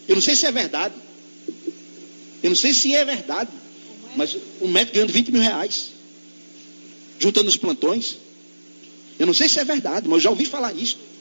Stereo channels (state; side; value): inverted; both; correlation -1.00